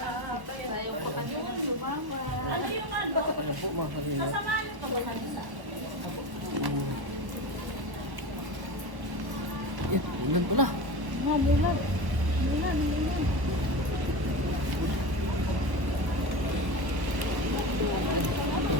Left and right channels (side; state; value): left; late; 1.1 ms